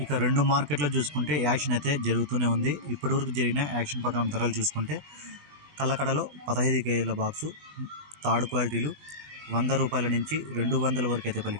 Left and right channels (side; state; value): left; late; 20 ms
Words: ఇక రెండు మార్కెట్లో చూసుకుంటే యాక్షన్ అయితే జరుగుతూనే ఉంది. ఇప్పటివరకు జరిగిన యాక్షన్ ప్రకారం ధరలు చూసుకుంటే కలకడలో 15 కేజీల బాక్సు థర్డ్ క్వాలిటీలు 100 రూపాయల నుంచి 200 వరకు అయితే